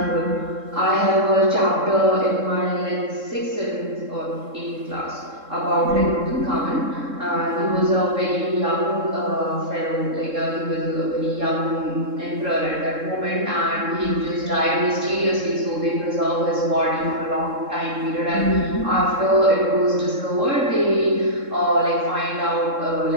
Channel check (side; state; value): left; late; 3.7 ms